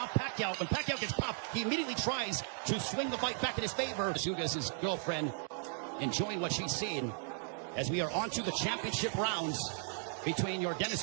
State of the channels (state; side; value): silent; left; 54 dB below the other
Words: Pacquiao, when Pacquiao gets popped, he immediately tries to swing the fight back in his favor. Ugas' girlfriend enjoying what she's seeing as we are on to the championship rounds between